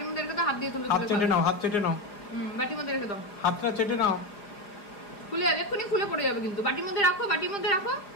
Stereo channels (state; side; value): late; right; 5.1 ms